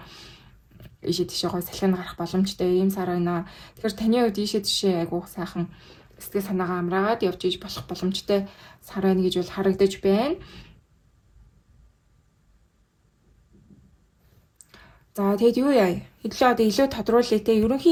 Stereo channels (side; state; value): both; identical; correlation 1.00